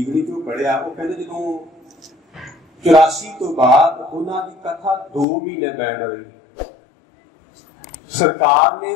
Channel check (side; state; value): right; drops out; at 5.2 s